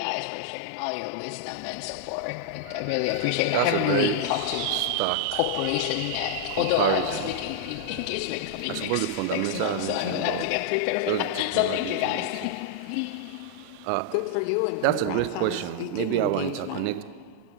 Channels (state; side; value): different; both; correlation -0.01